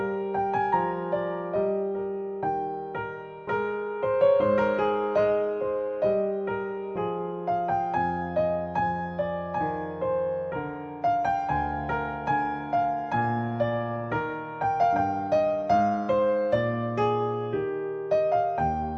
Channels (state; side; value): identical; both; correlation 1.00